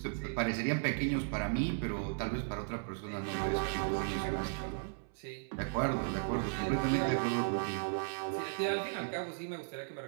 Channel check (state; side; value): silent; left; 54 dB below the other